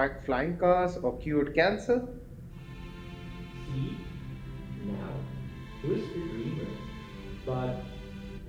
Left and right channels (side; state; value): both; identical; correlation 1.00